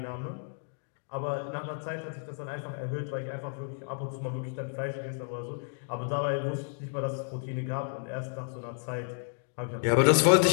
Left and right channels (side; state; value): right; silent; digital silence